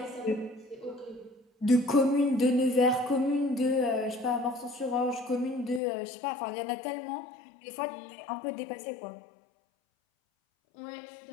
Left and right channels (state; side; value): drops out; right; at 5.8 s